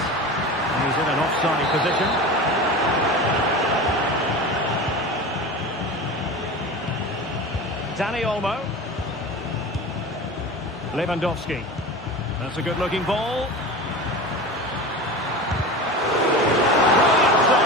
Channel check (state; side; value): normal; both; correlation 0.31